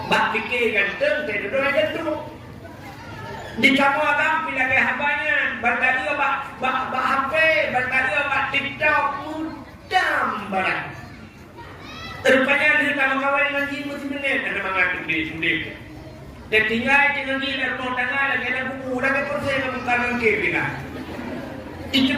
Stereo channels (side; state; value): both; identical; correlation 1.00